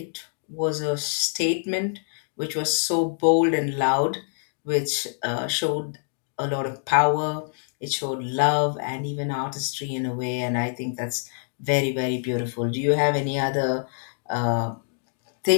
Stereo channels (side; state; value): right; silent; digital silence